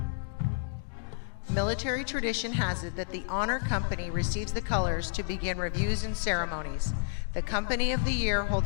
Military tradition has it that the Honor Company receives the colors to begin reviews and ceremonies. The Company of the Year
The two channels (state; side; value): silent; right; digital silence